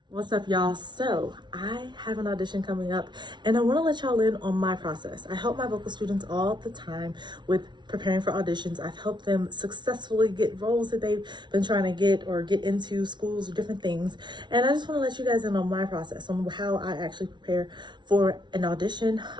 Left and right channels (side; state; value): left; late; 0.22 ms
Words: What's up, y'all? So I have an audition coming up and I want to let y'all in on my process. I help my vocal students all the time with preparing for auditions. I've helped them successfully get roles that they've been trying to get or get into schools or different things. And I just want to let you guys in on my process, on how I actually prepare for an audition.